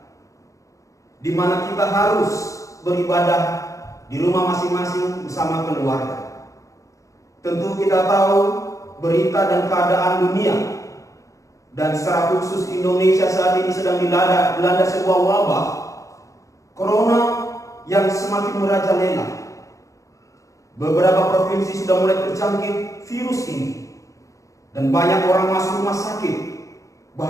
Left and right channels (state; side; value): late; right; 0.16 ms